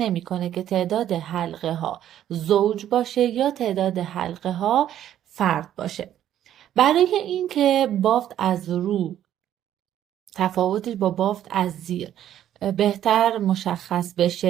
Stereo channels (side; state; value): left; quieter; 11.3 dB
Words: که تعداد حلقه ها زوج باشه یا تعداد حلقه ها فرد باشه. برای اینکه بافت از رو تفاوتش با بافت از زیر بهتر مشخص